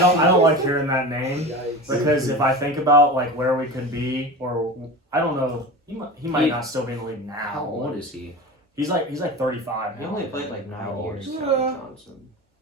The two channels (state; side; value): normal; both; correlation 0.29